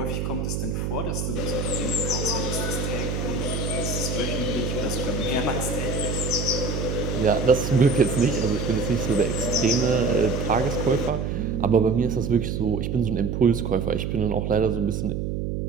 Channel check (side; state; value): right; noise; hum, 2 dB below the sound